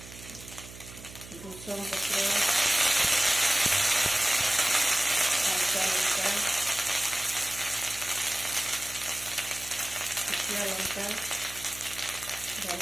भृषंग पत्र, कंचा लंका, सुखिला लंका,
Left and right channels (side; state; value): right; noise; hum, 16 dB below the sound